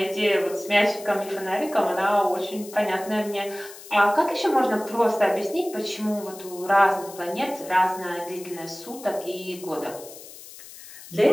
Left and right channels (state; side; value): noise; left; hiss, 17 dB below the sound